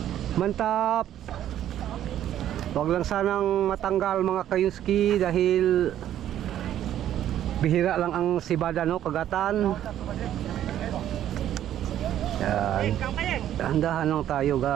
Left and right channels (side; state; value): left; quieter; 11.4 dB